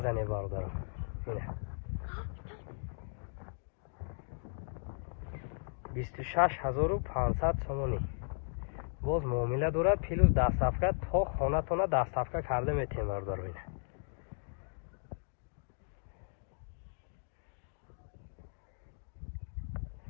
زنه برادرو. اینه 26,500 سومانی. باز معامله دارد پیلوز 10 صفحه تا خانه تونه 10 صفحه کرده میتین برادرو. اینه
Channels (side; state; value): right; silent; digital silence